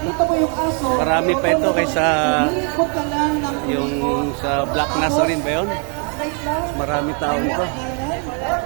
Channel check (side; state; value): left; quieter; 39.8 dB